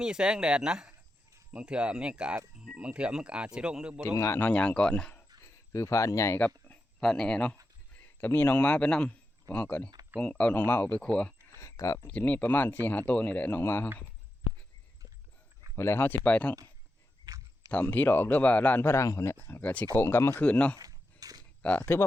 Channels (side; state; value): both; normal; correlation 0.88